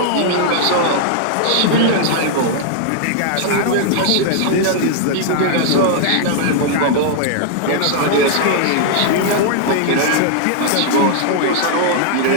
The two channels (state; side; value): different; both; correlation 0.00